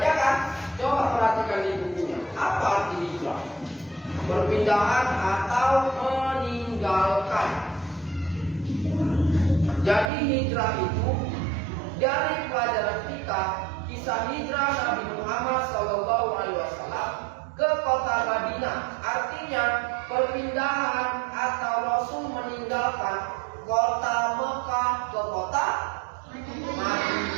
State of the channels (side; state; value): left; drops out; at 10.1 s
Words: kan? Coba perhatikan di bukunya. Apa arti hijrah? Perpindahan atau meninggalkan. Jadi hijrah itu dari pelajaran kita, kisah hijrah Nabi Muhammad SAW ke kota Madinah, artinya perpindahan atau Rasul meninggalkan kota Mekah ke kota